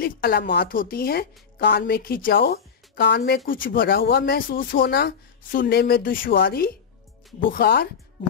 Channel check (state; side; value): quieter; right; 6.5 dB